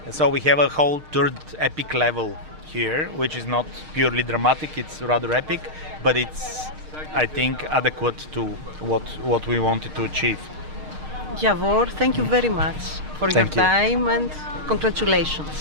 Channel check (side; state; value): left; late; 6.5 ms